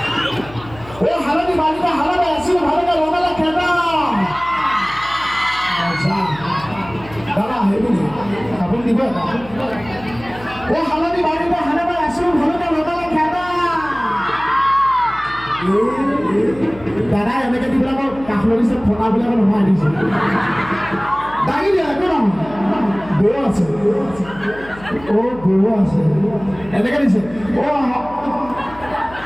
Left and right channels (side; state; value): left; noise; hum, 19 dB below the sound